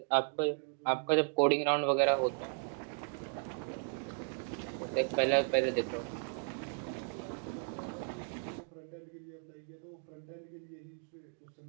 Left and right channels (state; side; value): silent; left; 54 dB below the other